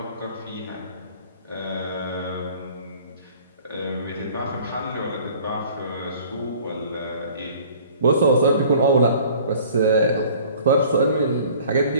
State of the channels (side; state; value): both; inverted; correlation -0.51